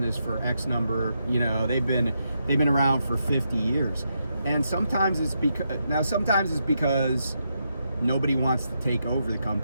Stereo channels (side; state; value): both; inverted; correlation -0.82